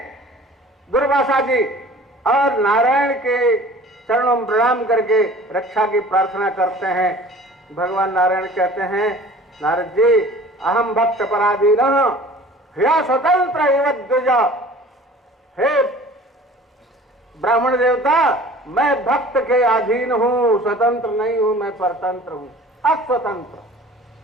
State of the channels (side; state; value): both; normal; correlation 0.45